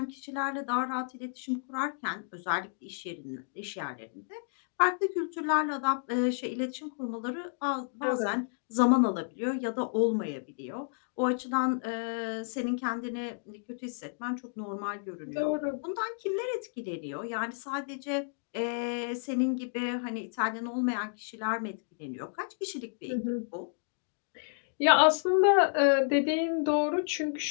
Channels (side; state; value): right; silent; digital silence